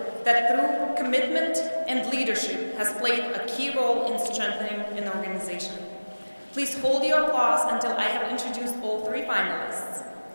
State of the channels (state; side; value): inverted; both; correlation -1.00